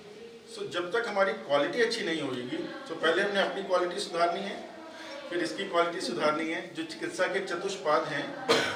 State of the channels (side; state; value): both; identical; correlation 1.00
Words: सो जब तक हमारी क्वालिटी अच्छी नहीं होगी तो पहले हमने अपनी क्वालिटी सुधारनी है, फिर इसकी क्वालिटी सुधारनी है। जो चिकित्सा के चतुष्पाद हैं